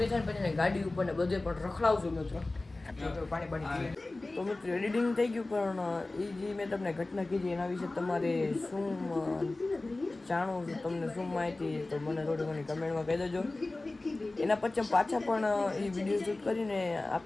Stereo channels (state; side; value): quieter; right; 3.0 dB